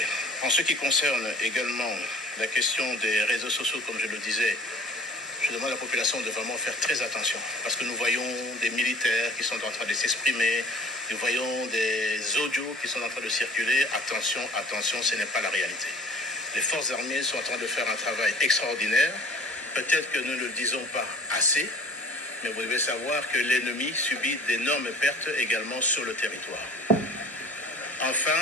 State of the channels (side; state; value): both; normal; correlation 0.46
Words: En ce qui concerne également la question des réseaux sociaux, comme je le disais, je demande à la population de vraiment faire très attention parce que nous voyons des militaires qui sont en train de s'exprimer, nous voyons des audios qui sont en train de circuler. Attention, attention, ce n'est pas la réalité. Les forces armées sont en train de faire un travail extraordinaire. Peut-être que nous ne le disons pas assez, mais vous devez savoir que l'ennemi subit d'énormes pertes également sur le territoire. Enfin,